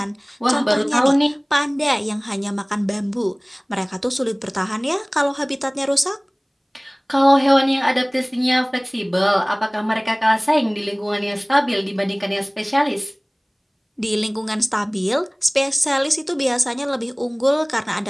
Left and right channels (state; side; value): identical; both; correlation 1.00